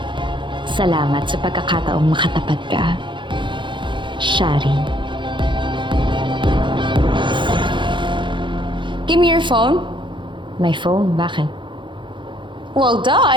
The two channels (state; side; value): late; left; 0.23 ms